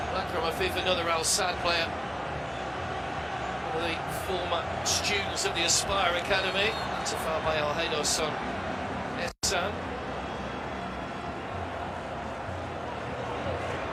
Akram Afif, another Al Sadd player, one of the former students of the Aspire Academy. That's a foul by Al Haydos on Ehsan.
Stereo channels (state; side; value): identical; both; correlation 1.00